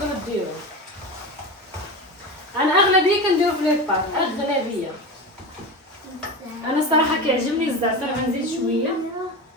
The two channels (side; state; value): both; normal; correlation 0.25